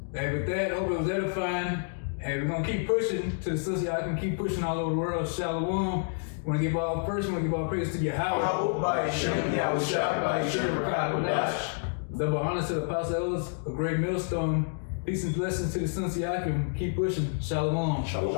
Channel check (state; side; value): silent; right; digital silence